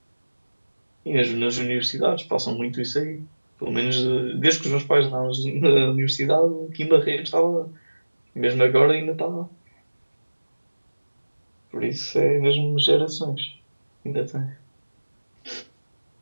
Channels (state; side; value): inverted; both; correlation -1.00